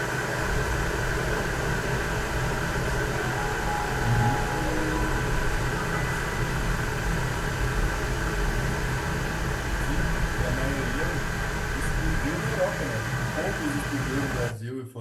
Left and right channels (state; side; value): identical; both; correlation 1.00